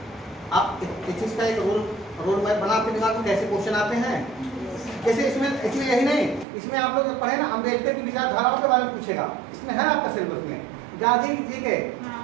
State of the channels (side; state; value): left; drops out; at 6.5 s